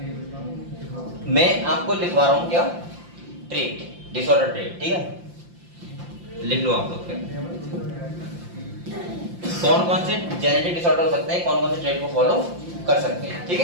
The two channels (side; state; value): left; late; 5.8 ms